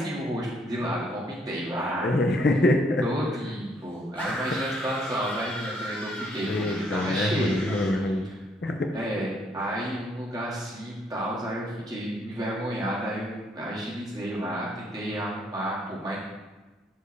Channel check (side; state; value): both; normal; correlation 0.68